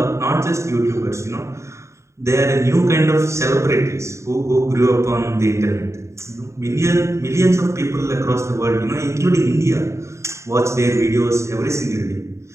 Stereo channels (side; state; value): left; late; 0.14 ms